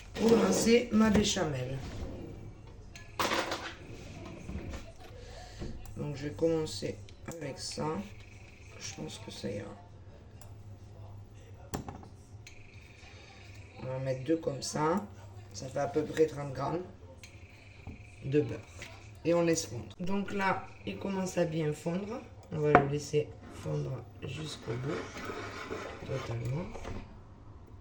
pour lancer ma béchamel. Donc je vais commencer avec ça. Je pense que ça ira. On va en mettre deux comme ça. Ça fait à peu près 30 grammes de beurre. Et on laisse fondre. Donc là, il commence à bien fondre. On va le laisser fondre jusqu'au bout. Totalement.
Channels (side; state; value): both; identical; correlation 1.00